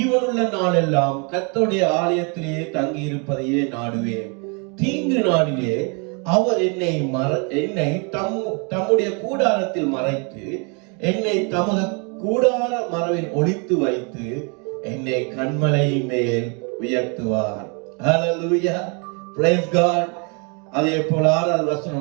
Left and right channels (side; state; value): left; quieter; 34.6 dB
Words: நாளெல்லாம் கர்த்தருடைய ஆலயத்திலே தங்கி இருப்பதையே நாடுவேன். தீங்கு நாளிலே அவர் என்னை தம்முடைய கூடாரத்தில் மறைத்து என்னை தமது கூடார மரவில் ஒளித்து வைத்து என்னை கண்மலை மேல் உயர்த்துவார். ஹல்லேலூயா, பிரைஸ் காட். அதே போல 6வது